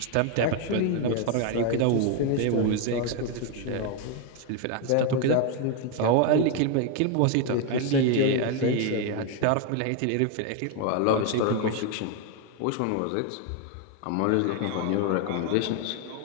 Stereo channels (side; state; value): both; different; correlation 0.01